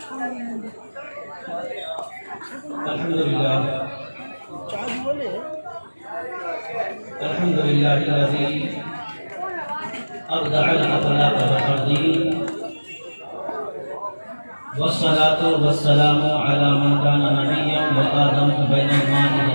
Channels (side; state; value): both; inverted; correlation -1.00